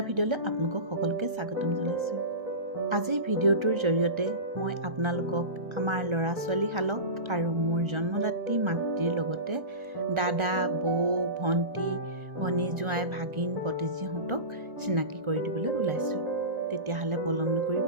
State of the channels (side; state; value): left; late; 1.4 ms